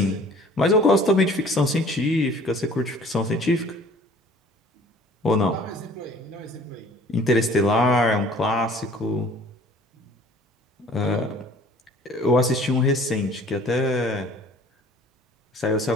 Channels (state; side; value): normal; both; correlation 0.51